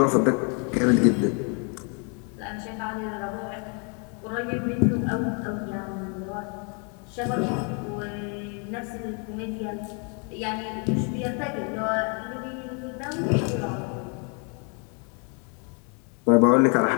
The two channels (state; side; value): quieter; right; 37.4 dB